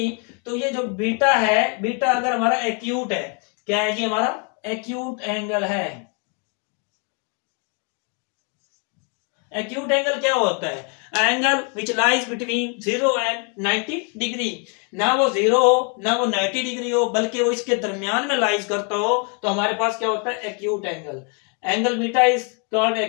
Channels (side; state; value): right; quieter; 37.2 dB